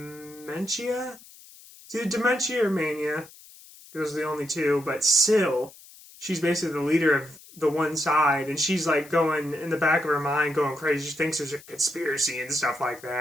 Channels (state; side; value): noise; left; hiss, 21 dB below the sound